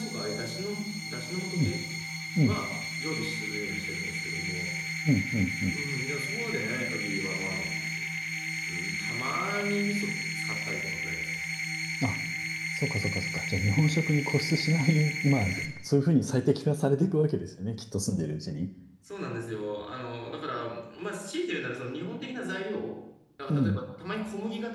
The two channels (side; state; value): both; identical; correlation 1.00